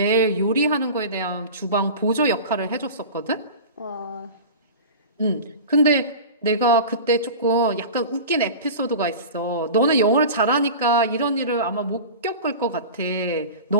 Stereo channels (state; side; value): inverted; both; correlation -0.33